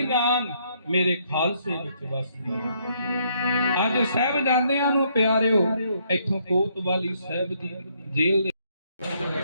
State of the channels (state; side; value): inverted; both; correlation -0.70